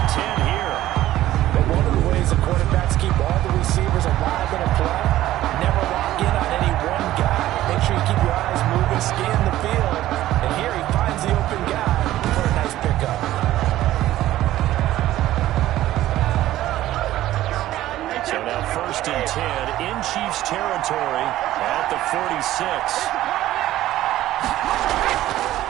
10 here. But one of the ways the quarterbacks keep all the receivers alive in a play, never lock in on any one guy. Make sure you keep your eyes moving, scan the field. And here he finds the open guy for a nice pickup. So now 1st and 10 in Chiefs territory at the 46.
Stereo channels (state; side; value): quieter; left; 14.5 dB